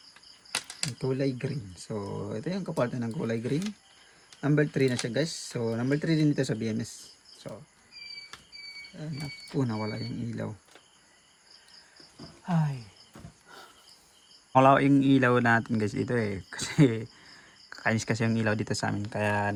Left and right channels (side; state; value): both; identical; correlation 1.00